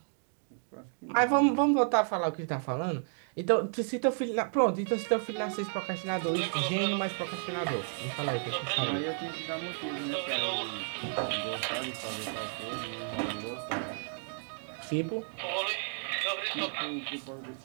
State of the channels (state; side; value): silent; left; 56 dB below the other